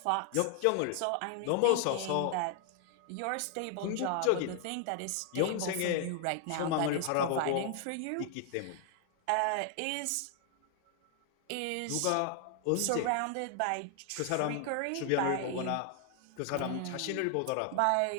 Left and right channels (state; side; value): different; both; correlation 0.00